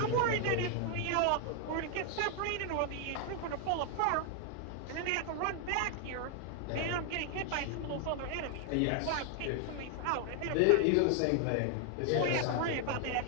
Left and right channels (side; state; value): both; different; correlation 0.00